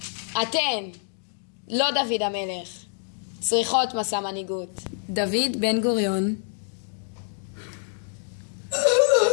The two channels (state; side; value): silent; right; digital silence